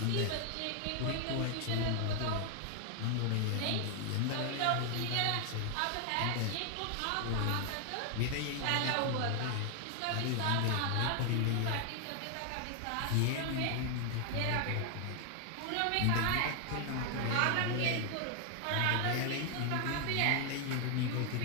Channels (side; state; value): both; different; correlation 0.00